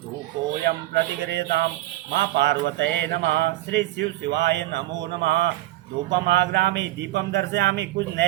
प्रतिगृह्यताम। माँ पार्वते नमः। श्री शिव शिवाय नमो नमः। धूपम आग्रामी दीपम दर्शयामि। कुछ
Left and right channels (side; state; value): left; quieter; 16.5 dB